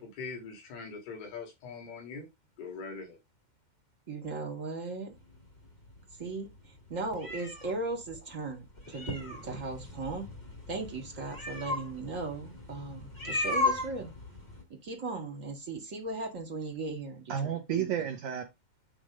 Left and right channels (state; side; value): late; right; 2.1 ms